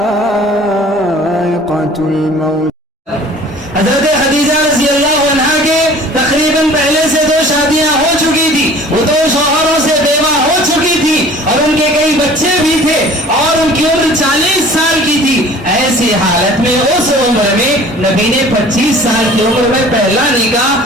الموت. حضرت خدیجہ رضی اللہ عنہ کے تقریباً پہلے سے 2 شادیاں ہو چکی تھی، وہ 2 شوہروں سے بیوہ ہو چکی تھی اور ان کے کئی بچے بھی تھے اور ان کی عمر 40 سال کی تھی. ایسی حالت میں اس عمر میں نبی نے 25 سال کی عمر میں پہلا نکاح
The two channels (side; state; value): both; normal; correlation 0.47